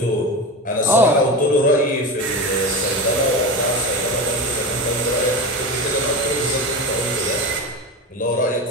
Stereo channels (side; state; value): both; normal; correlation 0.24